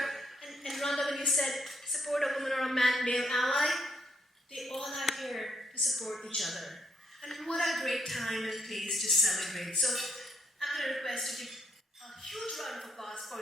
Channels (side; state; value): both; normal; correlation 0.73